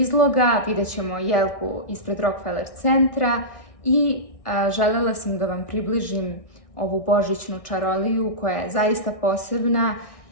vidjet ćemo jelku ispred Rockefeller centra i željela sam da vam približim ovu božićnu čaroliju koja je zaista posebna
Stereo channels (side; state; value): right; late; 1.6 ms